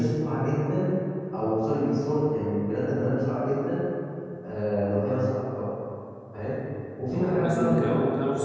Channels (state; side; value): identical; both; correlation 1.00